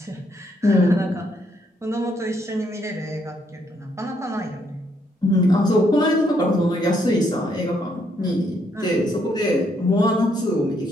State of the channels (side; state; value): both; normal; correlation 0.73